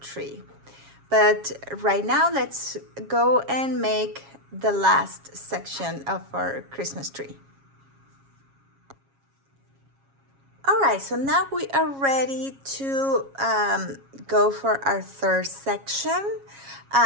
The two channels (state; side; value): late; left; 7.3 ms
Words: But right now, let's go and make the last section of our Christmas tree. All right, so now we are ready to go for our third section.